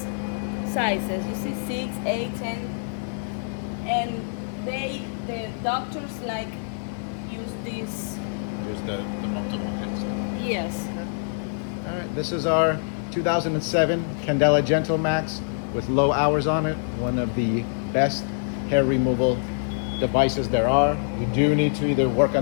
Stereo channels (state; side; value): silent; right; digital silence